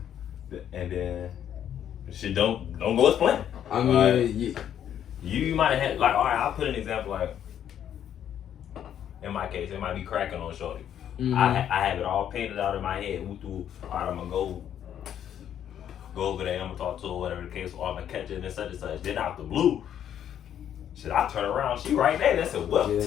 and then shit don't go as planned. I mean, you might have had, like, all right, I'll put an example, like, in my case, it might be cracking on shorty. I have it all painted out in my head. All right, I'm gonna go over there, I'm gonna talk to her, whatever the case, or I'm gonna catch it and such and such. Then out the blue, shit, I turn around, she right there. That's it. Well,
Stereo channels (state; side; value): quieter; right; 9.9 dB